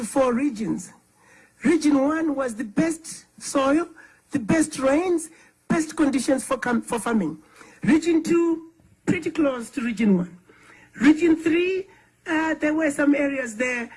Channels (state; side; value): identical; both; correlation 1.00